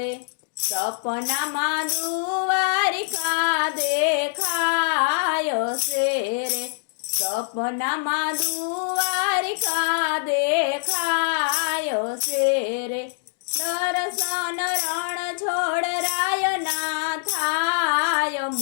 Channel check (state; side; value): silent; right; digital silence